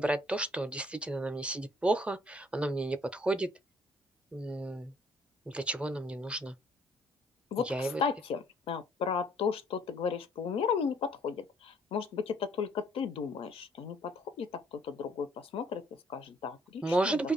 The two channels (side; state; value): both; normal; correlation 0.62